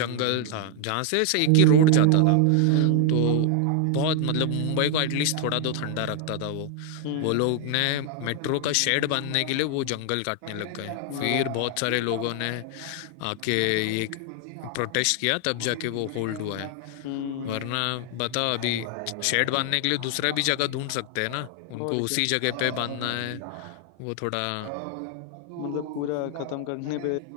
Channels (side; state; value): both; different; correlation 0.00